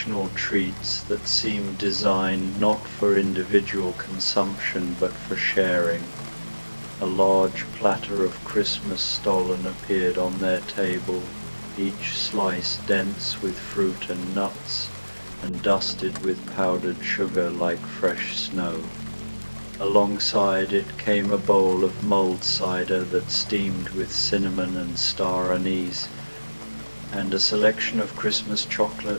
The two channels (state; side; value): inverted; both; correlation -1.00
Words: treats that seemed designed not for individual consumption but for sharing. A large platter of Christmas stollen appeared on their table, each slice dense with fruit and nuts, and dusted with powdered sugar like fresh snow. Alongside it came a bowl of mulled cider that steamed with cinnamon and star anise, and a selection of Christmas